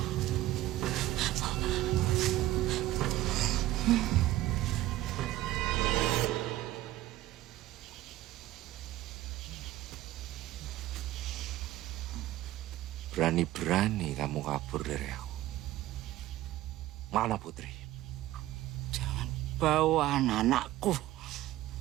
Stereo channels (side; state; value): left; quieter; 15.4 dB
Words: berani-berani kamu kabur dari aku. Mana Putri? Jangan bawa anak-anakku.